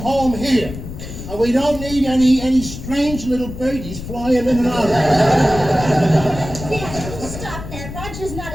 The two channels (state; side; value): noise; left; rumble, 10 dB below the sound